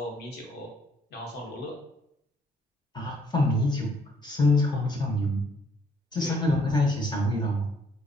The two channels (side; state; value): both; normal; correlation 0.66